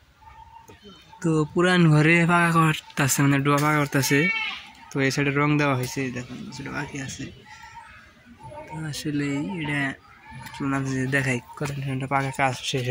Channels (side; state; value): both; identical; correlation 1.00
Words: তো পুরান ঘরে পাকা করতেছে, মানে ডোয়া পাকা করতেছে। তো এই সাইডে রং দেওয়া হয়েছে, দেখুন সেটা বাকি আছে। তো আসলে এটা দেখাই কতটা পাকা কাজ শেষ